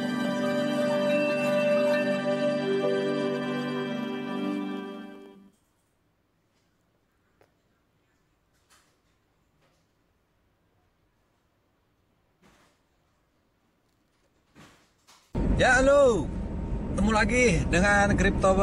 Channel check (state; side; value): identical; both; correlation 1.00